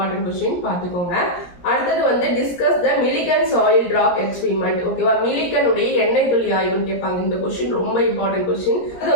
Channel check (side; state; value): right; late; 17 ms